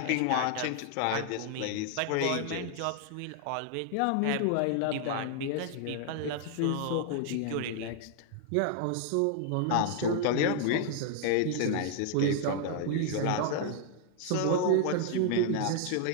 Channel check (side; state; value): both; different; correlation 0.00